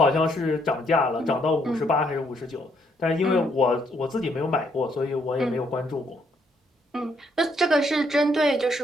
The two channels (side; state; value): both; normal; correlation 0.71